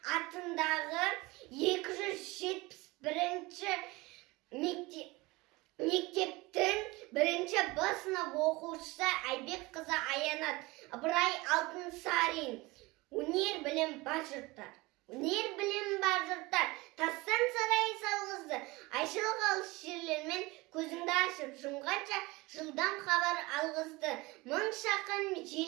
атындағы 271-ші мектептің 1-ші Б сынып оқушысы Айбекқызы Аянат Ыбырай Алтынсарин. Өнер білім бар жұрттар. Өнер білім бар жұрттар. Тастан сарай салғызды. Айшылық алыс жерлермен көзіңді ашып жұмғанша жылдам хабар алғызды. Мың шақын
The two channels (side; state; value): left; quieter; 22.6 dB